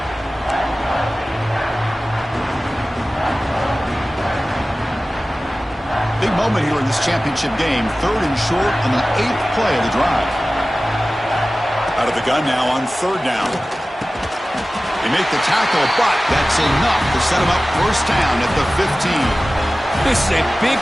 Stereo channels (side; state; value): both; normal; correlation 0.96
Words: Big moment here in this championship game. 3rd and short on the 8th play of the drive. Out of the gun now on 3rd down. They make the tackle, but that's enough to set them up 1st down at the 15. This is a big